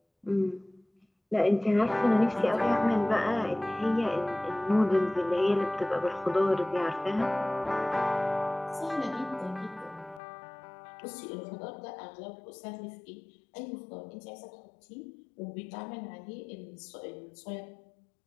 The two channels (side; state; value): right; drops out; at 10.2 s